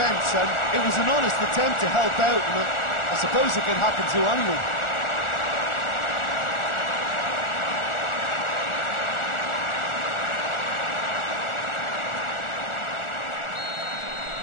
and it was an honest attempt to help out, and I suppose it can happen to anyone.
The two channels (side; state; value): right; late; 1.4 ms